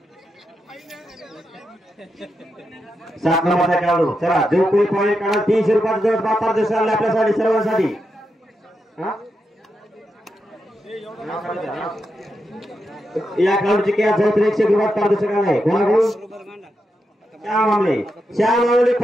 7 नंबरचा खेळाडू. चला जो कोणी पॉईंट काढा 300 रुपयाचा जवळ बापार दिवस आला आपल्यासाठी सर्वांसाठी. या खेळाडूची कॅच जवळ 100 रुपयात पारदर्शक आहे. कोणाकडून श्यामामुळे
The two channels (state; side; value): normal; both; correlation 0.86